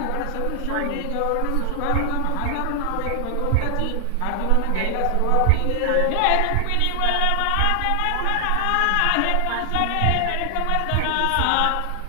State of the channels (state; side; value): different; both; correlation 0.00